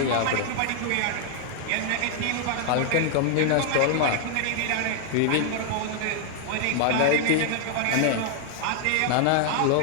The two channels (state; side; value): different; both; correlation 0.00